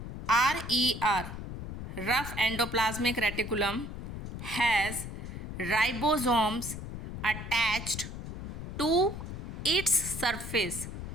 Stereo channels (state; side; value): noise; left; rumble, 7 dB below the sound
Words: RER, rough endoplasmic reticulum, has ribosomes attached to its surface